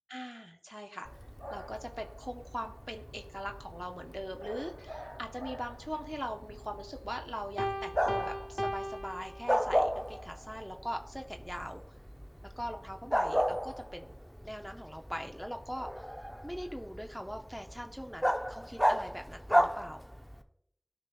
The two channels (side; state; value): both; identical; correlation 1.00